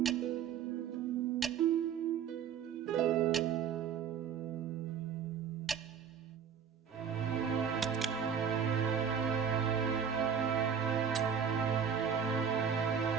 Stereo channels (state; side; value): quieter; left; 7.5 dB